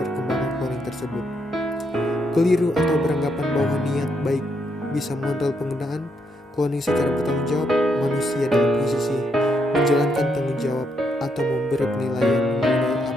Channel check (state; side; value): normal; both; correlation 0.77